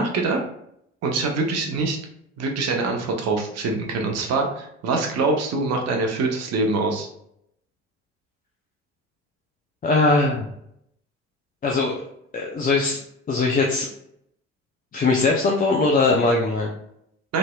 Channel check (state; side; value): normal; both; correlation 0.27